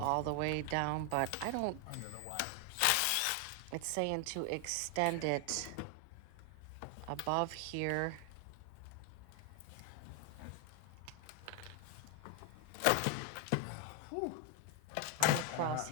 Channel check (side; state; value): both; different; correlation 0.01